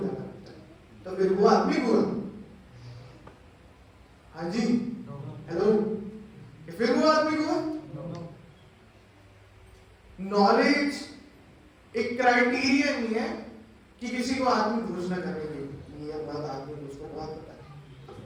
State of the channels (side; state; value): both; identical; correlation 1.00